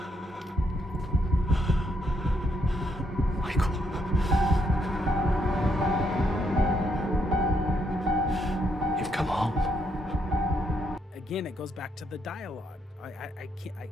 Michael. You've come home. Again, it goes back to the dialogue. I can't.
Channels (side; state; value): both; normal; correlation 0.75